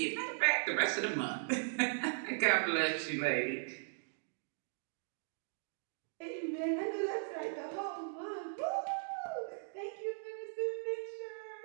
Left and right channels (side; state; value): left; silent; digital silence